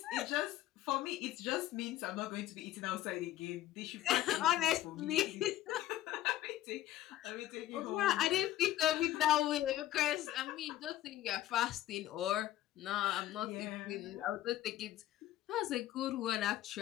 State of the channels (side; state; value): right; quieter; 13.8 dB